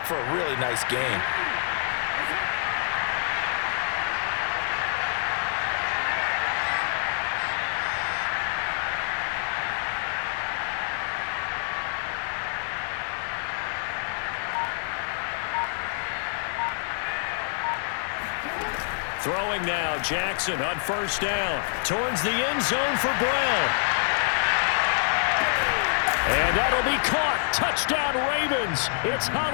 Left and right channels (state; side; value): silent; right; 58 dB below the other